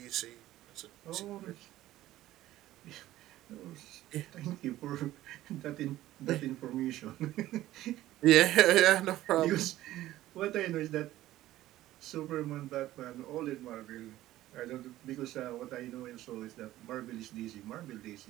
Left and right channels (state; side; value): quieter; left; 14.9 dB